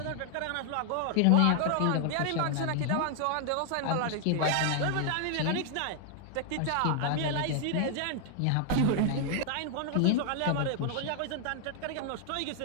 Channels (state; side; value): different; both; correlation 0.00